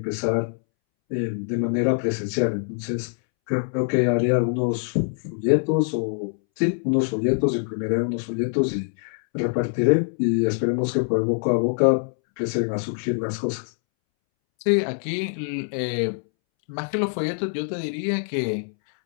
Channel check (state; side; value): silent; right; 63 dB below the other